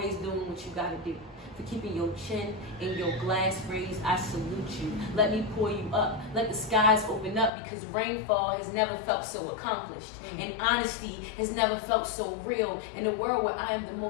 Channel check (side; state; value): right; drops out; at 7.5 s